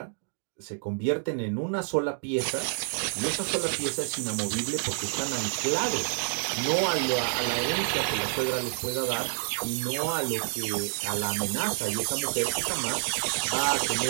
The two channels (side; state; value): left; silent; digital silence